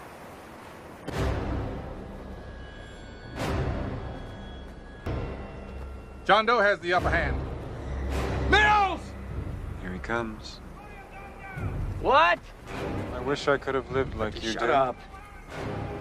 John Doe has the upper hand. Mills! Here he comes. What? I wish I could have lived like you did. Shut up.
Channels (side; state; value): both; identical; correlation 1.00